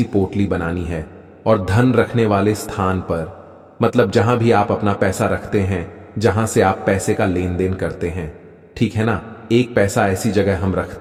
पोटली बनानी है और धन रखने वाले स्थान पर, मतलब जहां भी आप अपना पैसा रखते हैं, जहां से आप पैसे का लेन देन करते हैं, ठीक है ना, एक पैसा ऐसी जगह हम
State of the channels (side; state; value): both; identical; correlation 1.00